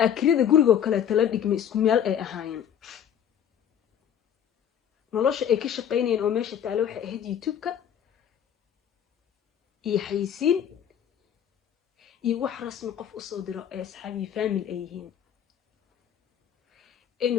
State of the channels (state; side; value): quieter; right; 9.2 dB